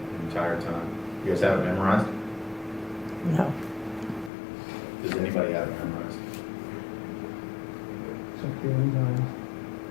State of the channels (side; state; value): right; drops out; at 4.3 s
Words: entire time. You guys have it memorized? No. Does anybody have it memorized? Check the enzyme.